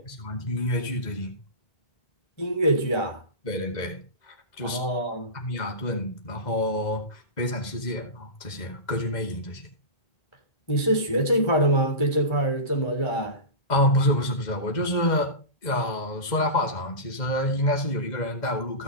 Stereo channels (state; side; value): late; right; 2.0 ms